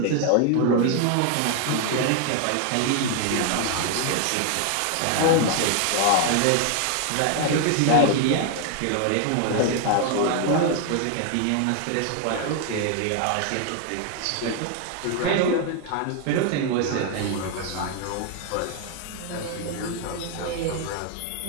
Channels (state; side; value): different; both; correlation 0.00